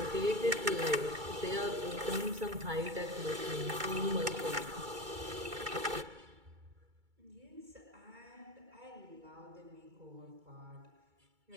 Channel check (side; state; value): left; late; 2.3 ms